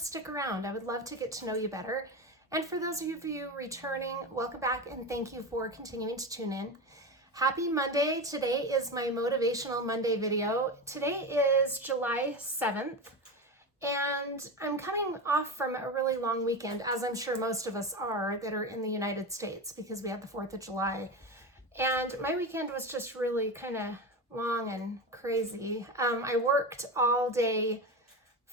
around. I would love to get to know you better. And for those of you returning, welcome back and thank you for continuing to tune in. Happy Monday. Today is my Motivational Monday video. Today is July 7th, and I'm coming off from a really long weekend, as I'm sure most of us are that are in the United States, because we had the 4th of July. And my weekend was just really kind of long and crazy. I worked all day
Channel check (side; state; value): both; normal; correlation 0.22